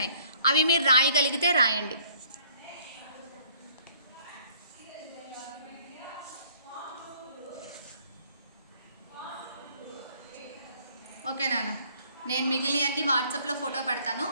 అవి మీరు రాయగలిగితే రాయండి. ఓకే నాన్న, నేను మిగిలిన అన్ని వాట్సాప్లో ఫోటో పెడతాను,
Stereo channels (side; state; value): both; inverted; correlation -0.59